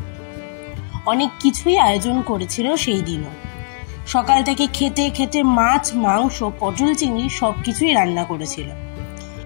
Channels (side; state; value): right; silent; digital silence